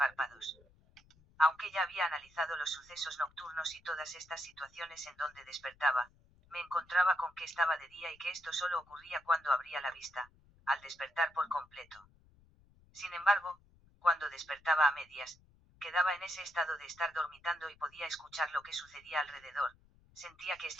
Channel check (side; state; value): left; noise; rumble, 29 dB below the sound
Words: Aunque ya había analizado los sucesos nocturnos y todas estas situaciones en donde despertaba, me encontraba con que estaba de día y que esto solo ocurría cuando abría la vista, al despertar por completo. Sin embargo, cuando despertaba a medias, quedaba en ese estado de estar dormitando y podía escuchar lo que sucedía alrededor, sentía que